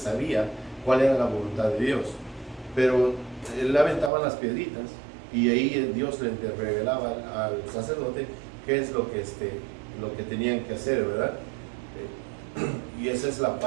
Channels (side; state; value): left; drops out; at 4.1 s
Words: cuál era la voluntad de Dios, pero él aventaba las piedritas, y ahí Dios le revelaba al sacerdote qué es lo que tenían que hacer, ¿verdad? Y esa es la